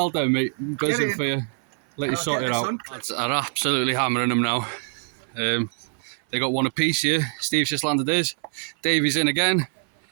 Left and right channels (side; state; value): left; silent; 58 dB below the other